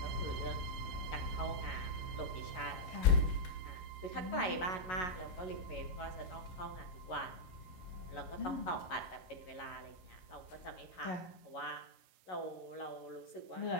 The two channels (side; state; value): right; late; 11 ms